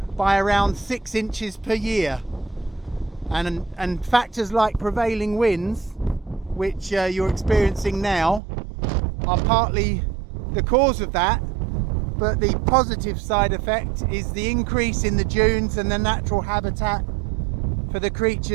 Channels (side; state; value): left; drops out; at 8.4 s